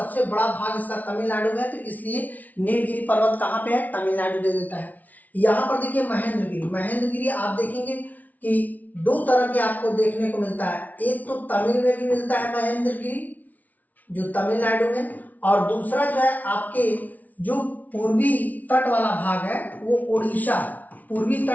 बड़ा भाग इसका तमिलनाडु में है, तो इसलिए नीलगिरी पर्वत कहाँ पे है? तमिलनाडु दे देता है। यहाँ पर देखिए महेंद्रगिरी। महेंद्रगिरी आप देखेंगे कि 2 तरह के आपको देखने को मिलता है। एक तो तमिल में भी मिलता है महेंद्रगिरी जो तमिलनाडु में, और दूसरा जो है आपके जो पूर्वी तट वाला भाग है वो उड़ीसा, पूर्वी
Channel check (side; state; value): right; late; 0.075 ms